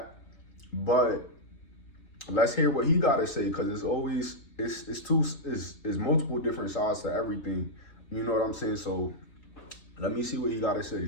But let's hear what he got to say, because it's multiple different sides to everything. You know what I'm saying? So let me see what he got to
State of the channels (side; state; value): right; late; 3.8 ms